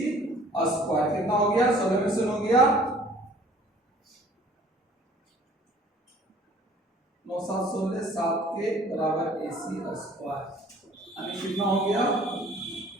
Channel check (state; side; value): normal; both; correlation 0.53